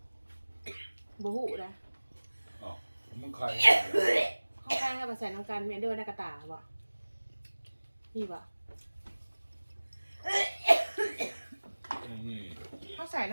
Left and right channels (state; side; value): inverted; both; correlation -1.00